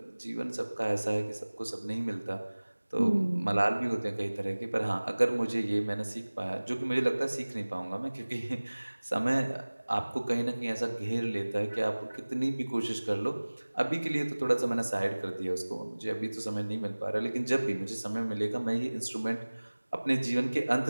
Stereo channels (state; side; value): inverted; both; correlation -1.00